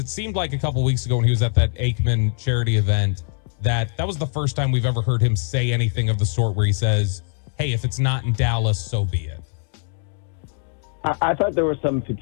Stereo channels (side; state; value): right; silent; 60 dB below the other